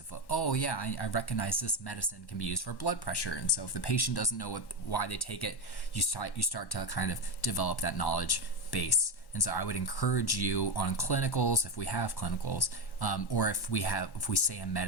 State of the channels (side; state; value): right; late; 1.1 ms